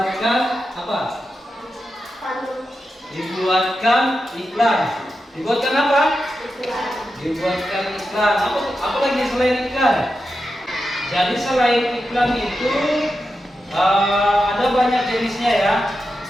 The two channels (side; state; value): both; normal; correlation 0.89